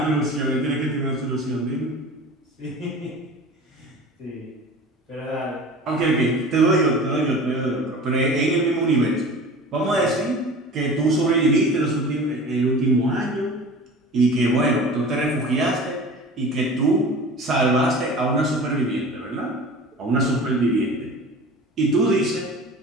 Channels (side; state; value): both; normal; correlation 0.38